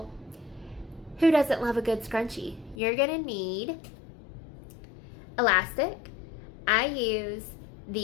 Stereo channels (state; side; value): drops out; right; at 2.8 s